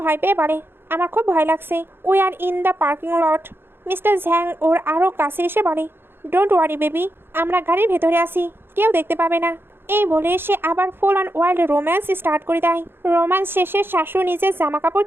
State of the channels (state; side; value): late; left; 0.10 ms